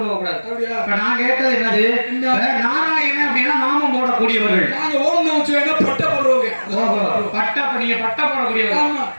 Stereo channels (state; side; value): inverted; both; correlation -1.00